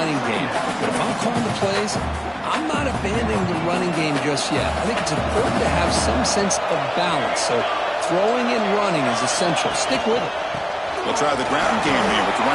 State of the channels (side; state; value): both; identical; correlation 1.00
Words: game. But if I'm calling the plays, I'm not abandoning the running game just yet. I think it's important to have some sense of balance. So throwing and running is essential. Stick with it. We'll try the ground game here with the